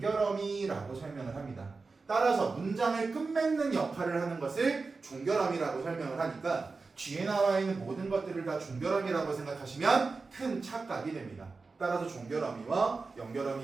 설명을 합니다. 따라서 문장을 끝맺는 역할을 하는 것을 종결어미라고 설명을 하니까 뒤에 나와 있는 모든 것들을 다 종결어미라고 생각하시면 큰 착각이 됩니다. 따라서 종결어미와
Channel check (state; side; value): quieter; left; 4.1 dB